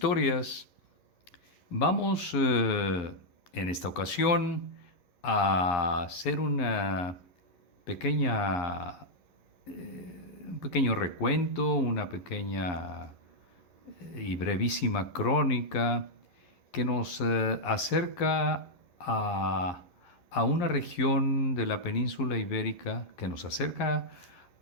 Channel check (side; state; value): right; late; 11 ms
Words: Vamos en esta ocasión a hacer pequeña, un pequeño recuento, una pequeña y brevísima crónica que nos acerca a una región de la península ibérica, que nos acerca